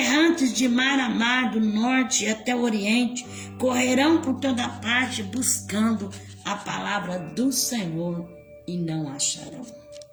de mar a mar, do norte até o oriente, correrão por toda parte buscando a palavra do Senhor e não acharão.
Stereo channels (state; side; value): identical; both; correlation 1.00